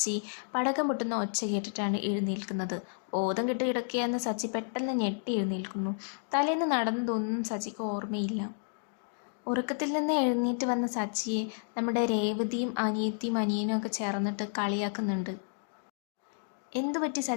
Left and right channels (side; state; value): right; silent; digital silence